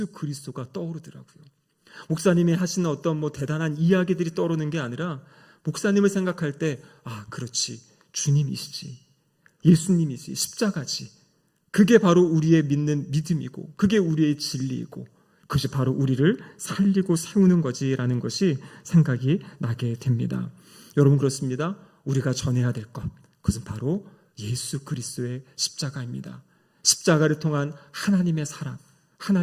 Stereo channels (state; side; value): identical; both; correlation 1.00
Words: 그리스도가 떠오르더라고요. 목사님이 하시는 어떤 대단한 이야기들이 떠오르는 게 아니라 목사님을 생각할 때, 아, 그렇지, 주님이시지, 예수님이지, 십자가지, 그게 바로 우리의 믿는 믿음이고 그게 우리의 진리이고 그것이 바로 우리를 살리고 세우는 거지라는 것이 생각이 나게 됩니다. 여러분, 그렇습니다. 우리가 전해야 될 것, 그것은 바로 예수 그리스도의 십자가입니다. 십자가를 통한 하나님의 사랑,